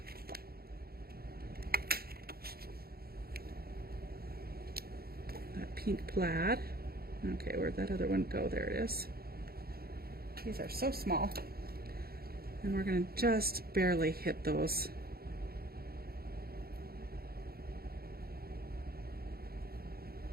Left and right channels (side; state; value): left; late; 0.44 ms